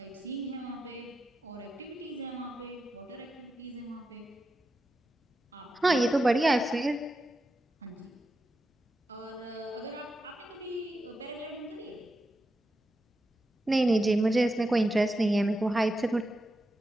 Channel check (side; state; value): both; normal; correlation 0.89